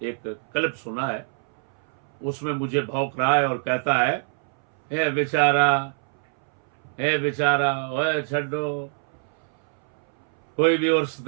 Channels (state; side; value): silent; left; 61 dB below the other